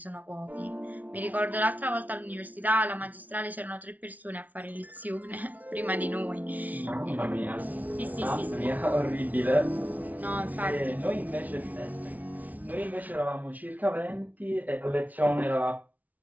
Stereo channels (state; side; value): late; left; 0.075 ms